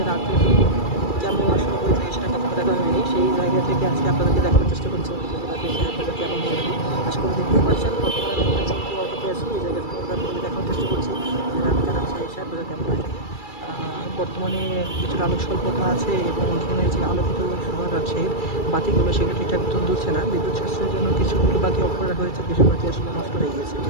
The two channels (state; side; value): late; right; 2.3 ms